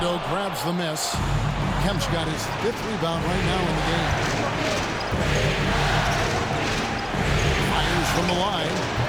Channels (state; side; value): identical; both; correlation 1.00